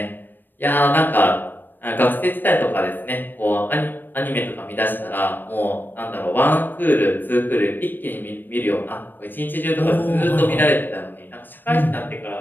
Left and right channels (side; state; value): right; late; 0.092 ms